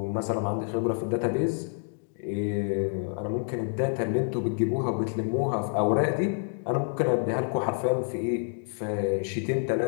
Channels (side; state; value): right; silent; digital silence